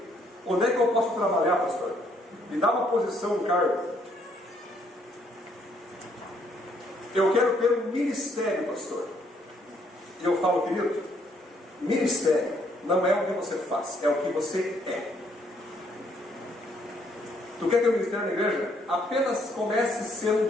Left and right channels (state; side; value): normal; both; correlation 0.69